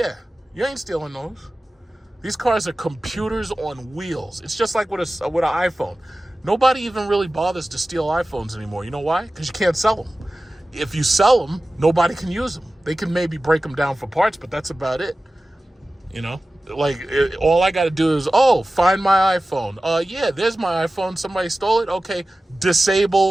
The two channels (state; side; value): normal; both; correlation 0.96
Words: you ain't stealing those. These cars are computers on wheels. It's just like with an iPhone. Nobody even really bothers to steal iPhones anymore. You know why? Because you can't sell them. If you sell them, nobody can use them. They can maybe break them down for parts, but that's about it. You know? Like, all I got to do is, find my iPhone. Yeah, there's my iPhone. Somebody stole it. Okay,